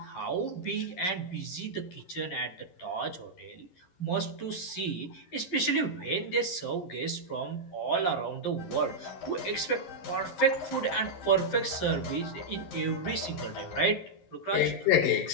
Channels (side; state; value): right; late; 11 ms